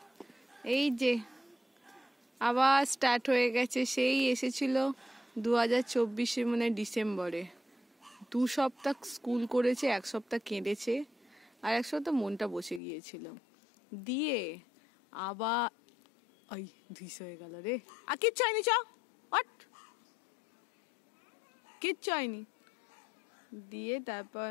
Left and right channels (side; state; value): right; drops out; at 12.8 s